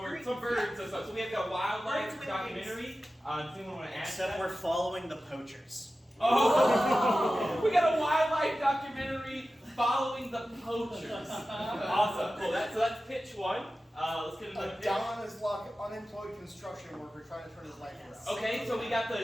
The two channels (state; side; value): normal; both; correlation 0.94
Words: some birds and stuff. So we have got a wildlife documentary. Does anyone want to add to Except that? we're following the poachers. Oh! We got a wildlife documentary following the poachers. Awesome, cool. So that's pitch 1. Let's get another pitch. Don is like unemployed construction worker trying to turn his life around. Okay, so we got